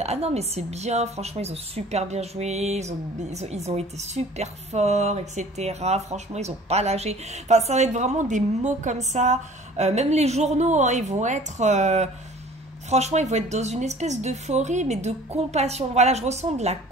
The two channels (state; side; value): normal; both; correlation 0.48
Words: ah non, mais c'est bien, franchement, ils ont super bien joué, ils ont été super forts, etc. Franchement, ils ont pas lâché. Enfin, ça va être vraiment des mots comme ça. Même les journaux, hein, ils vont être... franchement, ils vont être dans une espèce d'euphorie, mais de compassion. Voilà, je ressens de la